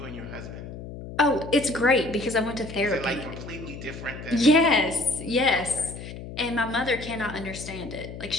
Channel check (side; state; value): left; noise; hum, 11 dB below the sound